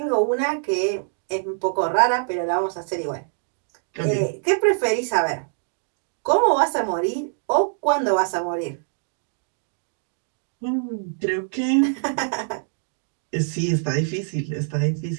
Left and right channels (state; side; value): silent; left; digital silence